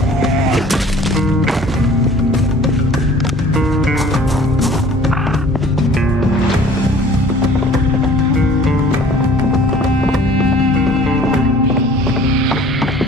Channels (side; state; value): both; normal; correlation 0.51